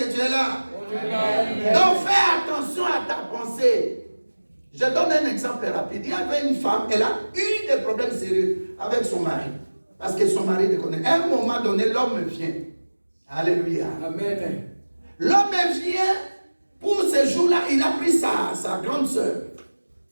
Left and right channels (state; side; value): inverted; both; correlation -1.00